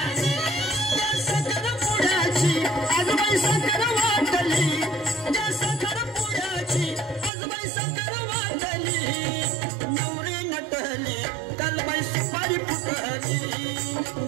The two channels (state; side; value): drops out; left; at 7.3 s